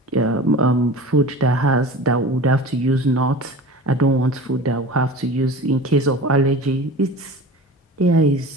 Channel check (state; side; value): normal; both; correlation 0.36